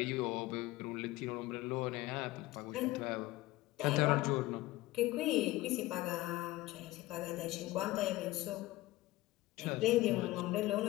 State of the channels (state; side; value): quieter; right; 18.2 dB